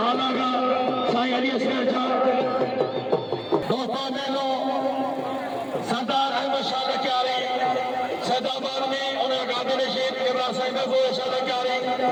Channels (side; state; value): both; identical; correlation 1.00